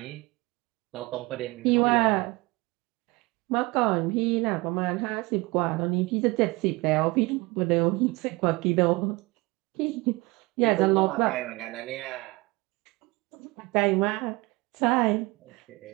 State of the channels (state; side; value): quieter; left; 23.3 dB